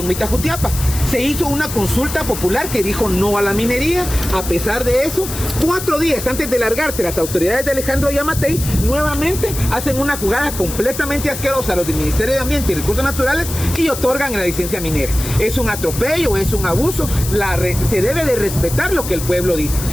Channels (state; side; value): noise; left; hiss, 8 dB below the sound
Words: Mita, Jutiapa. Se hizo una consulta popular que dijo no a la minería. A pesar de eso, 4 días antes de largarse, las autoridades de Alejandro Yamatei nuevamente hacen una jugada completamente asquerosa a los del Ministerio de Ambiente y Recursos Naturales y otorgan la licencia minera. Es un atropello, es un abuso, se debe de respetar lo que el pueblo dice.